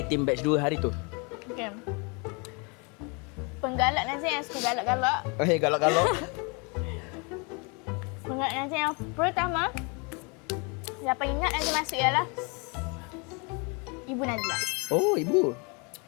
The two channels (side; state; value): right; quieter; 32.0 dB